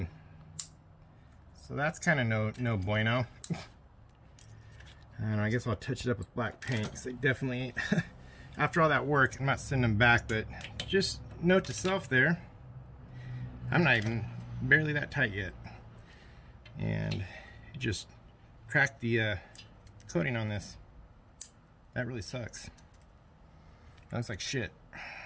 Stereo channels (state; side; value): identical; both; correlation 1.00